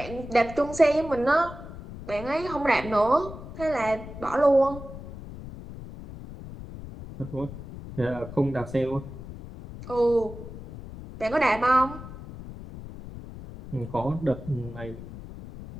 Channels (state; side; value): noise; left; rumble, 13 dB below the sound